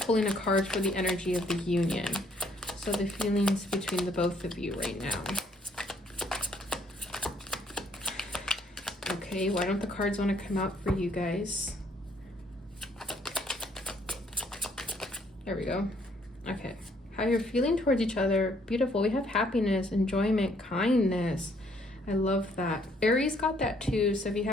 a card for the energy of the union. So the feelings between the both of you right now. Okay, why don't the cards want to come out for you guys? There we go. Okay, how you're feeling towards each other. Beautiful. We have happiness, enjoyment, kindness. I love that. Aries got that too. So if you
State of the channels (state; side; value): normal; both; correlation 0.66